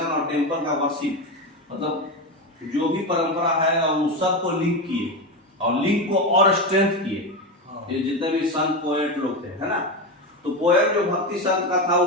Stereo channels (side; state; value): both; normal; correlation 0.17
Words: और टेम्पल का वर्शिप, मतलब जो भी परंपरा है और उस सब को लिंक किए और लिंक को और स्ट्रेंथ किए। ये जितने भी संत पोएट लोग थे, है ना, तो पोएट जो भक्ति संत का था